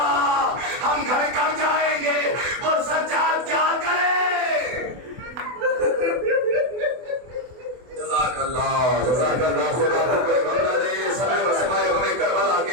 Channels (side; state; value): left; late; 24 ms